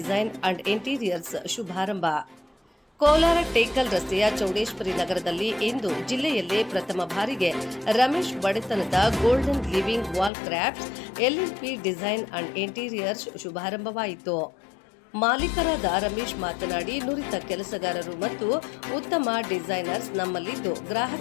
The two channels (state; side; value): drops out; right; at 10.3 s